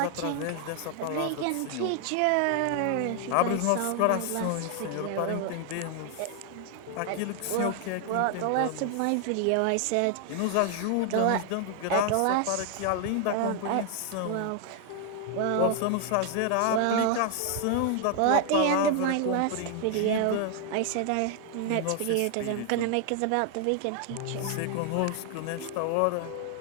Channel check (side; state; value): both; different; correlation 0.00